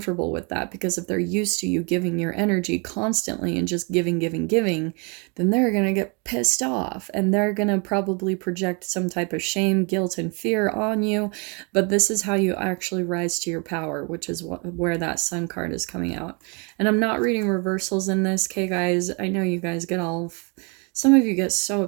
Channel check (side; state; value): left; quieter; 33.2 dB